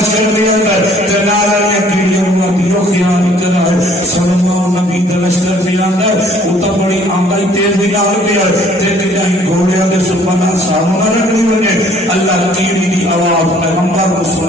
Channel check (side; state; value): both; normal; correlation 0.58